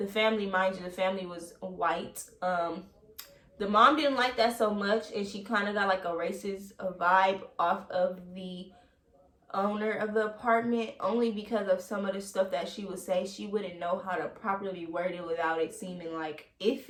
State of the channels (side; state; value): both; identical; correlation 1.00